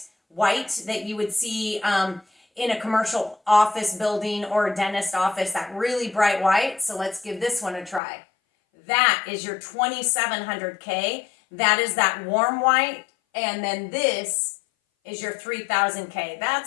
white that you would see in a commercial office building or a dentist office, that really bright white. So let's give this one a try. That is your 2700 K. That is that warm white. And then this is your 3000 K.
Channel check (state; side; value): drops out; right; at 8.0 s